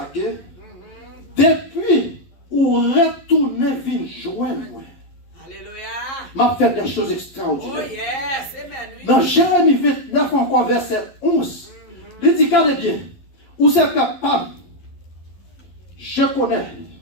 que depuis où retourner vin joindre moi. Alléluia. M'a fait des choses Oh extraordinaires. yes. Amen. Oui. Dans Jérémie 29 encore verset 11, il dit regardez bien, où c'est capable, je connais.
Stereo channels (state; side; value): late; right; 11 ms